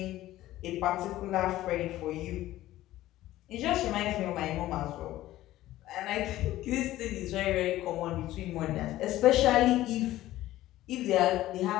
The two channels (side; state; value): right; quieter; 15.2 dB